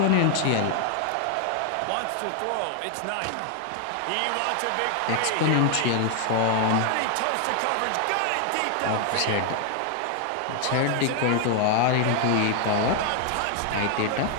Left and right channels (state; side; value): different; both; correlation 0.00